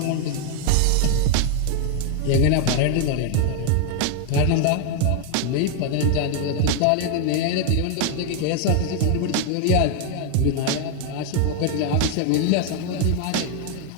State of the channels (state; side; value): different; both; correlation 0.00